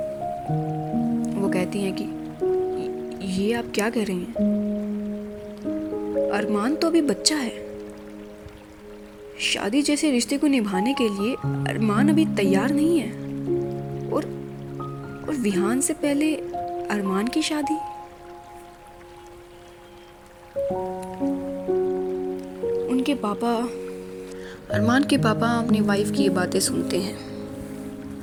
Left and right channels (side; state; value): both; identical; correlation 1.00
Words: वो कहती हैं कि ये आप क्या कह रही हैं? अरमान तो अभी बच्चा है। शादी जैसे रिश्ते को निभाने के लिए अरमान अभी तैयार नहीं है। और विहान से पहले अरमान की शादी। अरमान के पापा अपनी वाइफ की ये बातें सुनते हैं।